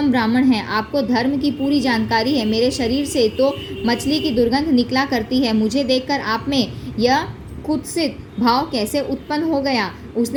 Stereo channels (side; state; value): both; identical; correlation 1.00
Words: ब्राह्मण हैं। आपको धर्म की पूरी जानकारी है। मेरे शरीर से तो मछली की दुर्गंध निकला करती है। मुझे देखकर आप में यह कुत्सित भाव कैसे उत्पन्न हो गया?